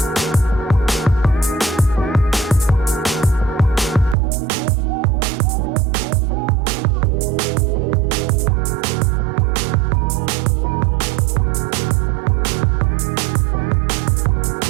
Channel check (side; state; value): left; drops out; at 4.2 s